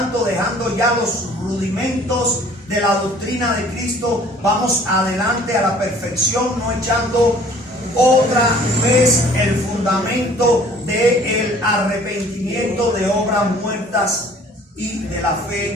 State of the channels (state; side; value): normal; both; correlation 0.53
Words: dejando ya los rudimentos de la doctrina de Cristo, vamos adelante a la perfección, no echando otra vez el fundamento del arrepentimiento de obras muertas y de la